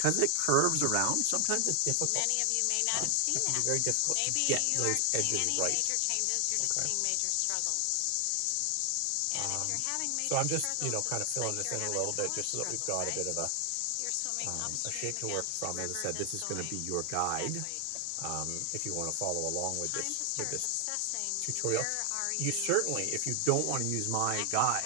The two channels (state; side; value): different; both; correlation 0.00